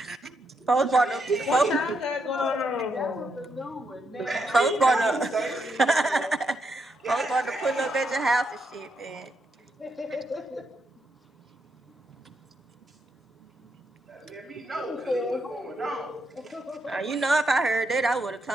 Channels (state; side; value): normal; both; correlation 0.80